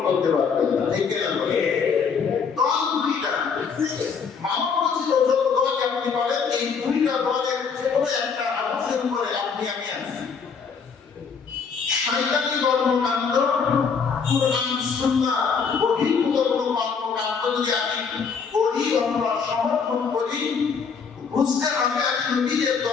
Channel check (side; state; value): right; quieter; 5.9 dB